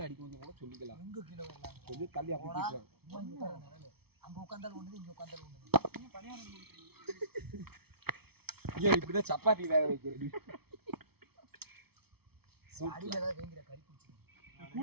அடிக்க வந்து கூட சொல்லிக்கலாம். கொஞ்சம் தள்ளி இப்படிதான் சப்பாத்தி வேக வைக்கிறது.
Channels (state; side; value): late; left; 0.96 ms